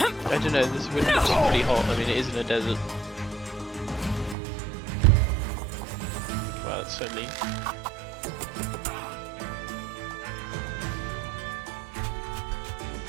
I don't know, this wind looks pretty hot. I mean, it is in a desert. Wow, that's so mean.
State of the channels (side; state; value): left; drops out; at 4.4 s